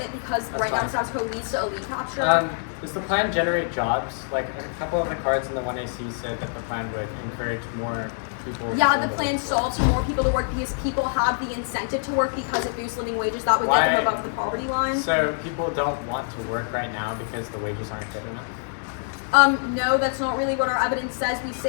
because right now the status quo leads to elite capture. Does the plan generate jobs? Like a couple of the cards in the 1AC said that the plan would encourage more people. Yeah, the plan solves for more people to work because people have the incentive to work because it boosts living wages. That would get them above the poverty line. So people don't want to work right now because the wages aren't good enough? No, that's not really what our evidence says. We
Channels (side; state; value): right; silent; digital silence